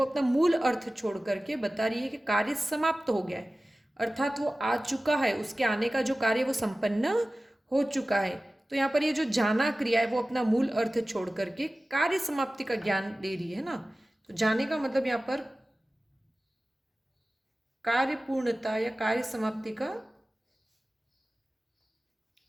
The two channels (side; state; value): both; normal; correlation 0.97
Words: अपना मूल अर्थ छोड़ करके बता रही है कि कार्य समाप्त हो गया है, अर्थात वो आ चुका है, उसके आने का जो कार्य वो संपन्न हो चुका है। तो यहाँ पर ये जो जाना क्रिया है वो अपना मूल अर्थ छोड़ करके कार्य समाप्ति का ज्ञान दे रही है ना। तो जाने का मतलब यहाँ पर कार्य पूर्णता या कार्य समाप्ति का